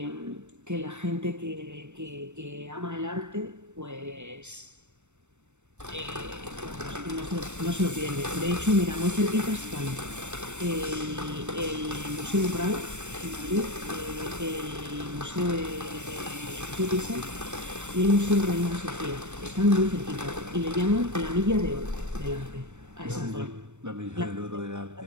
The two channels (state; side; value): late; left; 0.84 ms